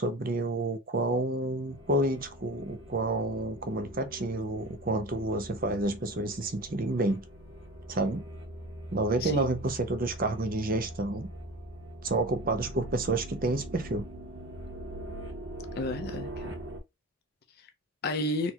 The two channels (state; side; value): normal; both; correlation 0.33